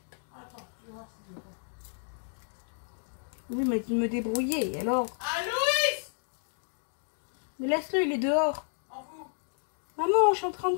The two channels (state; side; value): silent; right; 57 dB below the other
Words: tu vas voir s'il veut pas. Oui, il m'a dit de me débrouiller, et alors... Ah, Louis! Mais laisse-le, il est dehors. En vous. Maman, je suis en train de